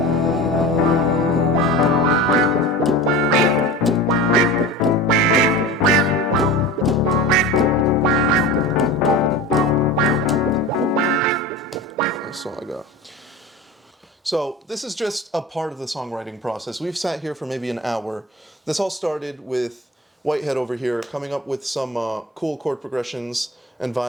That's all I got. So this is just a part of the songwriting process. We've sat here for maybe an hour. This all started with Whitehead over here coming up with some cool chord progressions and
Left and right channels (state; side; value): normal; both; correlation 0.32